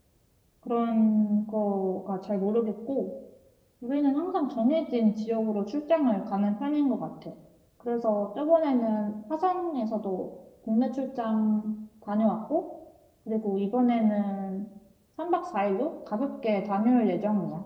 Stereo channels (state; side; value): identical; both; correlation 1.00